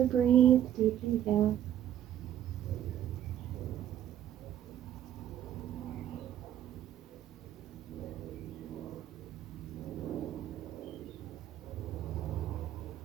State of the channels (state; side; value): quieter; left; 11.2 dB